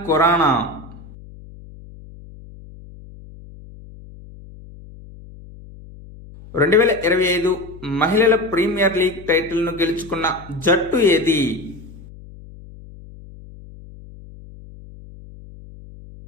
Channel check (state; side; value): noise; left; hum, 19 dB below the sound